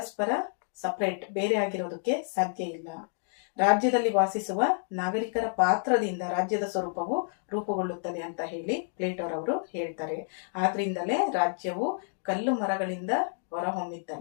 ಸಪರೇಟ್, ಬೇರೆ ಆಗಿರೋದಕ್ಕೆ ಸಾಧ್ಯ ಇಲ್ಲ. ರಾಜ್ಯದಲ್ಲಿ ವಾಸಿಸುವ ನಾಗರಿಕರ ಪಾತ್ರದಿಂದ ರಾಜ್ಯದ ಸ್ವರೂಪವು ರೂಪುಗೊಳ್ಳುತ್ತದೆ ಅಂತ ಹೇಳಿ ಪ್ಲೇಟೋರವರು ಹೇಳ್ತಾರೆ. ಆದ್ರಿಂದಲೇ ರಾಜ್ಯವು ಕಲ್ಲು ಮರಗಳಿಂದ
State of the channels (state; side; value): silent; right; digital silence